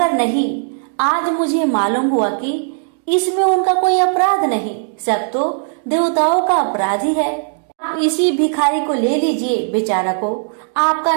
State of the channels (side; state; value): left; silent; digital silence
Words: नहीं, आज मुझे मालूम हुआ कि इसमें उनका कोई अपराध नहीं, सब तो देवताओं का अपराध ही है। आप इसी भिखारी को ले लीजिए। बेचारा को आपका